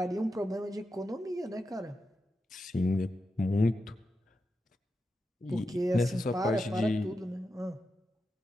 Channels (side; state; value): both; normal; correlation 0.89